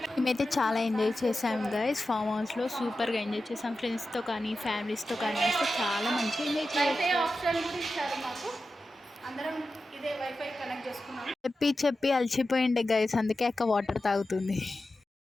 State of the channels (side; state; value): both; normal; correlation 0.92